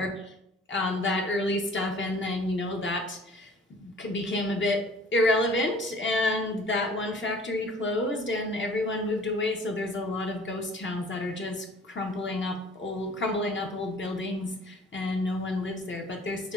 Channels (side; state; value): both; normal; correlation 0.51